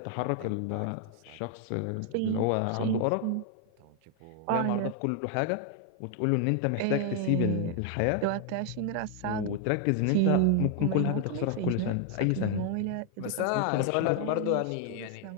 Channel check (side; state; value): both; different; correlation 0.00